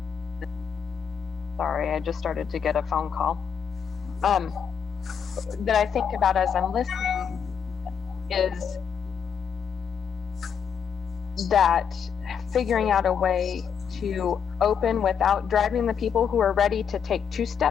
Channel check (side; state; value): right; quieter; 7.2 dB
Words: sorry, I just started to get a phone call, that I think about as I'm listening is that figuring out a way to open without driving the people who are ready to take 2